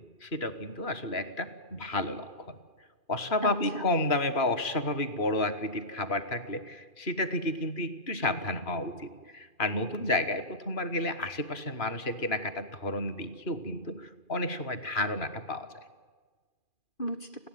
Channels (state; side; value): late; right; 2.4 ms